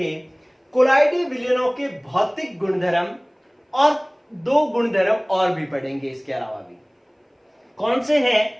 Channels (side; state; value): both; identical; correlation 1.00